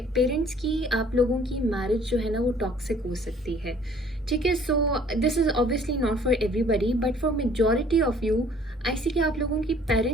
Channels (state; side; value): normal; both; correlation 0.56